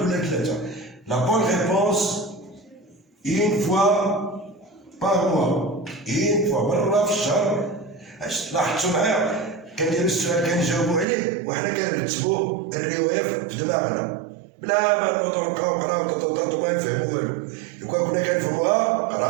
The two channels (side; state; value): left; drops out; at 11.1 s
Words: ثلاثه. لا بون ريبونس une fois par mois. une fois مرة في الشهر. لاحظتوا معايا كندير السؤال كنجاوبوا عليه وحنا كنرتبوا الرواية في دماغنا بلا ما نوضو نبقاو نقراو ما نفهمو والو. لو كان كنا كنفهموها